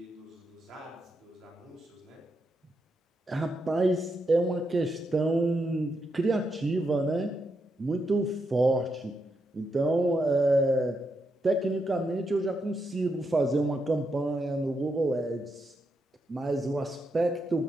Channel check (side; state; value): both; normal; correlation 0.82